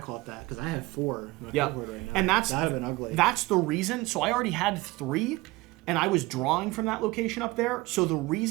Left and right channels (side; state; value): left; quieter; 21.2 dB